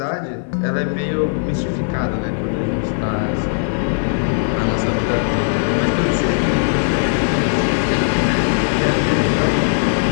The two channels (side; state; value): right; silent; 57 dB below the other